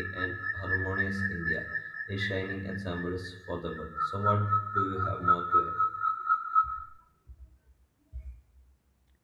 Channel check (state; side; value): identical; both; correlation 1.00